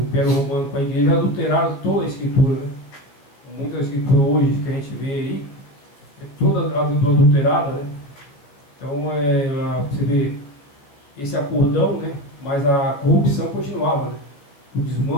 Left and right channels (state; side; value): late; right; 14 ms